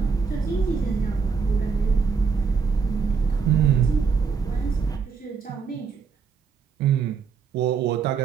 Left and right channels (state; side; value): quieter; left; 5.6 dB